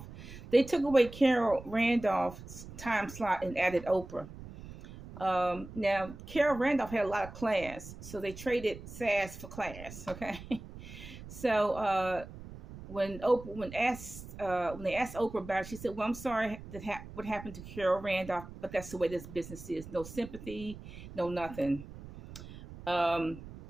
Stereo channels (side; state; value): right; noise; rumble, 14 dB below the sound